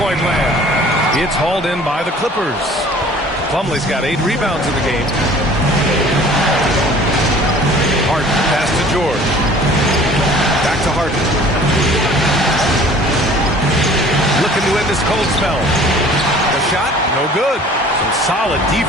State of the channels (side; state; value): both; normal; correlation 0.49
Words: land. It's hauled in by the Clippers. Plumlee's got 8 rebounds in the game. Harden, pass to George. Back to Harden. Looking to end this cold spell. The shot, no good. Some solid